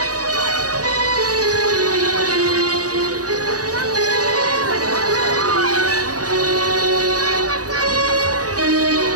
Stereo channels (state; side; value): late; left; 0.67 ms